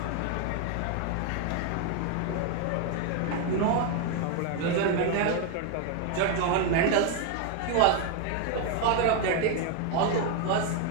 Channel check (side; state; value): both; different; correlation 0.01